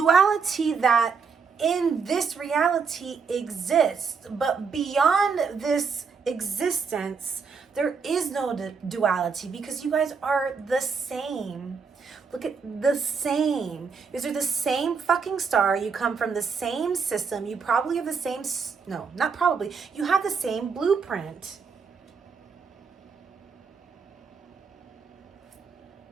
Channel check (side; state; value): left; quieter; 5.5 dB